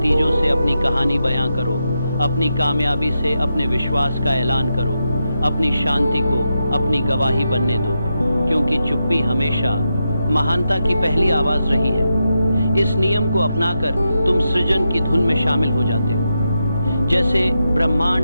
से अपनी कहानी बयां करो। अपनी कामयाबी से अपने विश्वास का ऐलान करो। अपनी शांति को अपनी गवाही बनने दो, क्योंकि चुप्पी हमेशा महानता की पहली आवाज रही है। इस नियम को अपनाकर तुम सृजन की धुन में शामिल हो जाते हो। जैसे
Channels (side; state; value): both; inverted; correlation -0.87